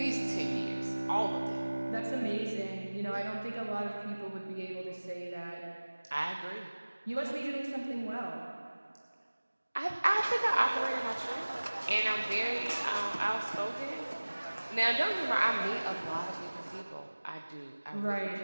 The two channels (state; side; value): inverted; both; correlation -1.00